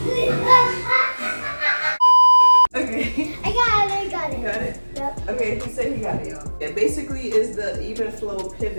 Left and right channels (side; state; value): both; inverted; correlation -1.00